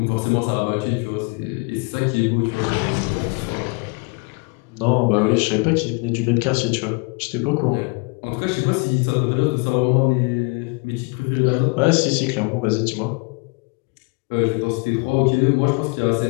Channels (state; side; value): quieter; right; 32.3 dB